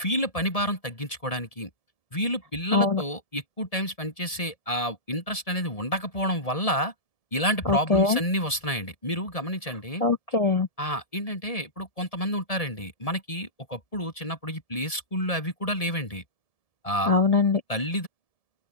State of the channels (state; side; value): late; right; 1.7 ms